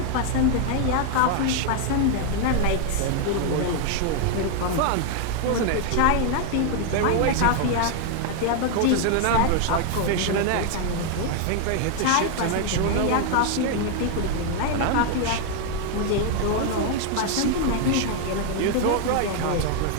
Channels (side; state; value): both; different; correlation 0.00